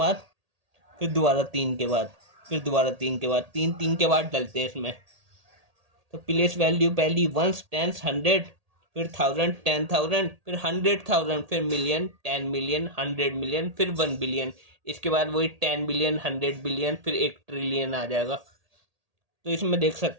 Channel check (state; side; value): late; left; 1.8 ms